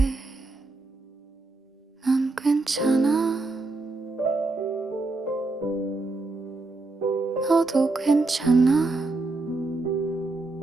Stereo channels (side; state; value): left; quieter; 3.3 dB